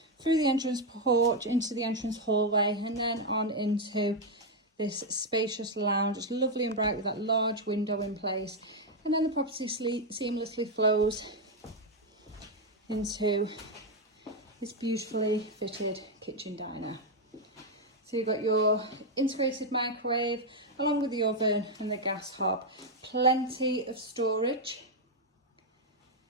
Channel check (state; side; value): normal; both; correlation 0.02